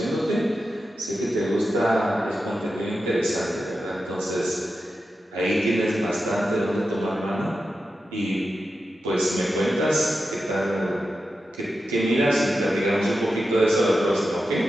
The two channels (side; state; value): both; normal; correlation 0.90